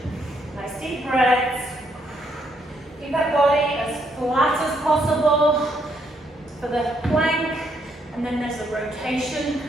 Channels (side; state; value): both; normal; correlation 0.73